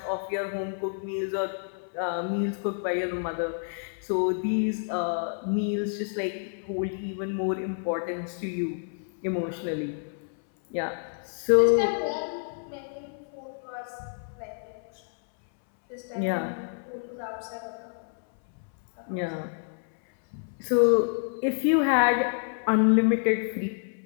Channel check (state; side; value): silent; right; 59 dB below the other